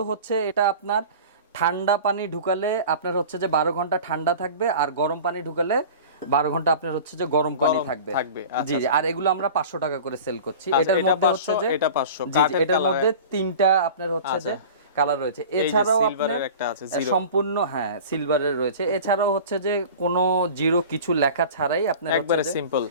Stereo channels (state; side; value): inverted; both; correlation -0.38